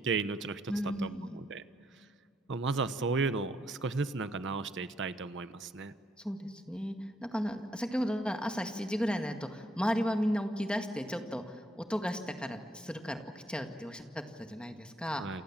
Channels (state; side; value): normal; both; correlation 0.73